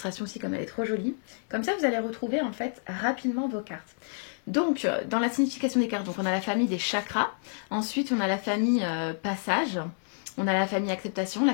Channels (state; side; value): silent; right; 59 dB below the other